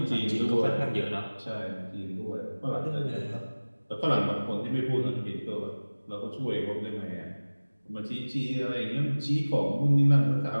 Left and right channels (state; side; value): inverted; both; correlation -1.00